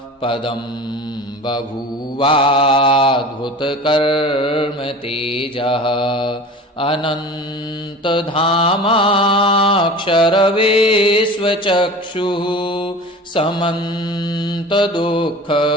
पदं बभूवाद्भुतकर्म तेजः अनन्तधामाक्षरवेश्वचक्षुः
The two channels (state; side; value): normal; both; correlation 0.37